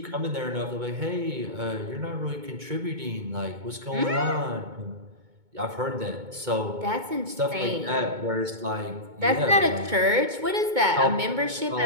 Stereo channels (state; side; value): late; left; 2.2 ms